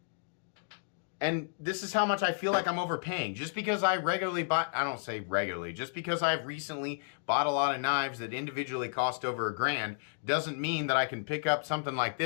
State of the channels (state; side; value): silent; right; digital silence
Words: and this is how much I feel like I'm overpaying. Just because I regularly buy, I don't say regularly, just because I've recently bought a lot of knives that individually cost over $1,000 doesn't mean that I can pick up something like